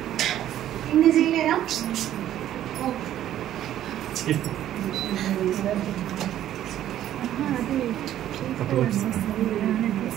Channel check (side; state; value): left; quieter; 12.0 dB